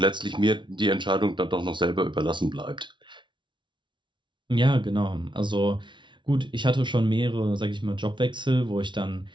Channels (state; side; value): late; left; 0.24 ms